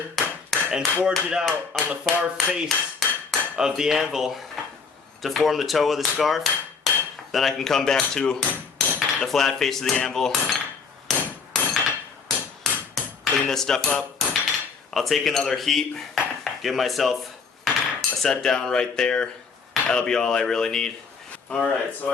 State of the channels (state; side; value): quieter; right; 5.2 dB